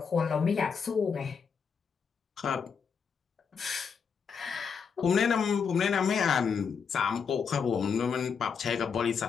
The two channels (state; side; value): quieter; right; 6.2 dB